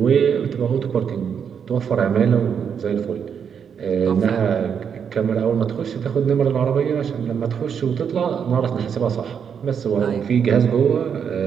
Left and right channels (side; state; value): left; quieter; 7.3 dB